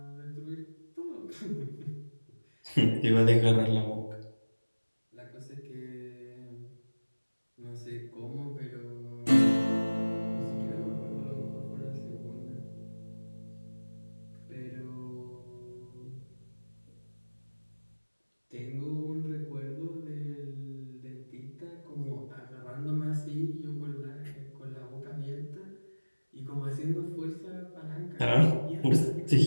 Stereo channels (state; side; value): inverted; both; correlation -1.00